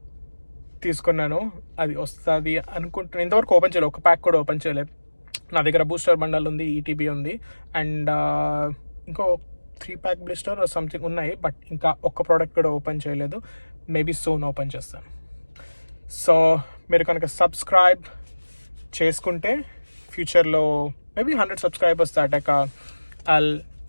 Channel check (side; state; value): both; inverted; correlation -1.00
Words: తీసుకున్నాను. అది వస్తుంది అనుకుంటున్నాను. ఇంతవరకు ఓపెన్ చేయలేదు, ఒక ప్యాక్ కూడా ఓపెన్ చేయలేదు. నా దగ్గర బూస్టర్ బండల్ ఉంది, ETB ఉంది, అండ్ ఇంకో 3 pack బ్లిస్టర్ సంథింగ్ ఉన్నాయి. బట్ ఇంకా ఒక్క ప్రోడక్ట్ కూడా ఓపెన్ చేయలేదు. మేబీ సూన్ ఓపెన్ చేస్తాను. సో మీరు కనుక సబ్స్క్రైబ్ చేసుకుంటే ఫ్యూచర్లో మేబీ 100 subscribers దాటాక I'll